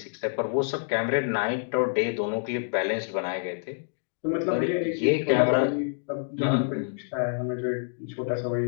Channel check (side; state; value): right; silent; digital silence